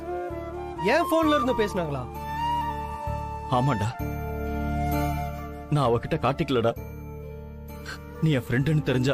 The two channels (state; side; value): identical; both; correlation 1.00